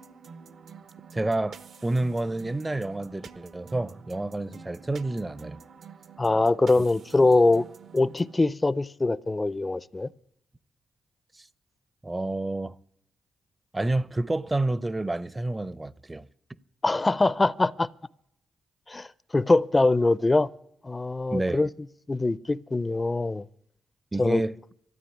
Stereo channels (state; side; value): normal; both; correlation 0.97